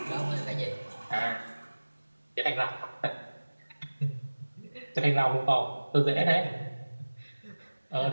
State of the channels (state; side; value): inverted; both; correlation -1.00